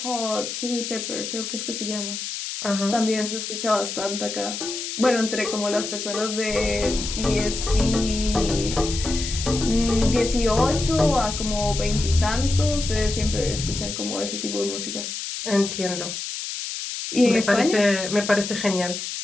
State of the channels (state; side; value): noise; left; hiss, 6 dB below the sound